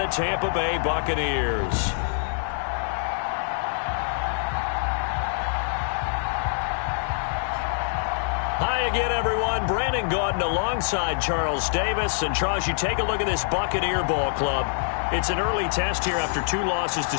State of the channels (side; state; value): right; silent; 62 dB below the other